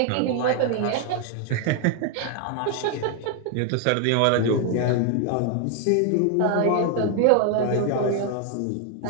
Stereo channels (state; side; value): different; both; correlation 0.00